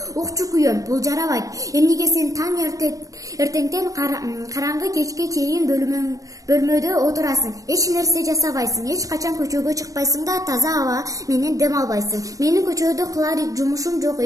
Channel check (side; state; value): left; late; 0.16 ms